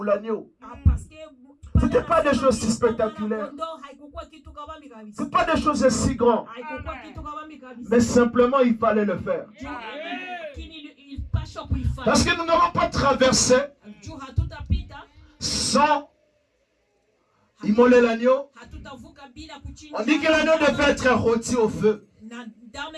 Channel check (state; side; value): identical; both; correlation 1.00